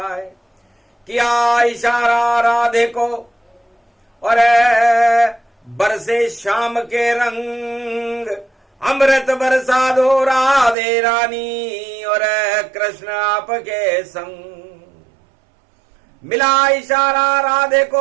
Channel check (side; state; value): left; drops out; at 10.8 s